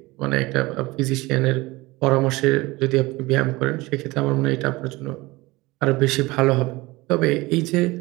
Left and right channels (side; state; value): left; quieter; 21.5 dB